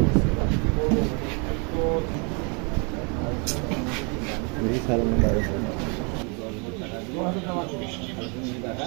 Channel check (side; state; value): left; quieter; 34.1 dB